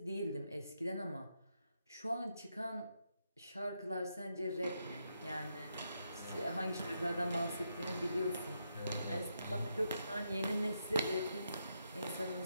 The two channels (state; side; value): inverted; both; correlation -0.81